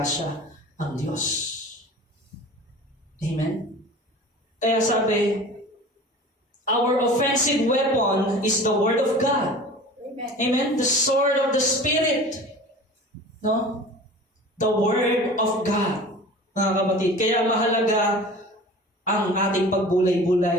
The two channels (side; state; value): both; normal; correlation 0.40